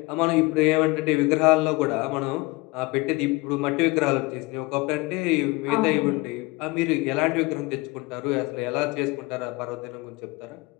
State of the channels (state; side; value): quieter; right; 24.0 dB